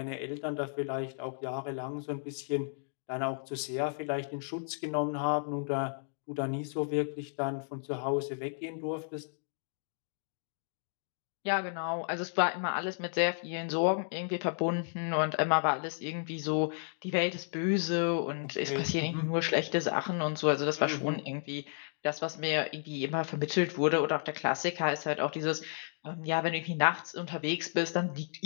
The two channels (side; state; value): right; silent; digital silence